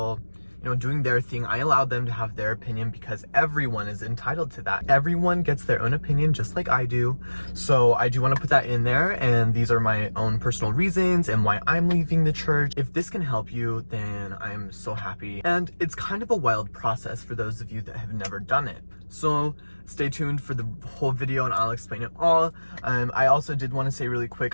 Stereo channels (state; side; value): inverted; both; correlation -1.00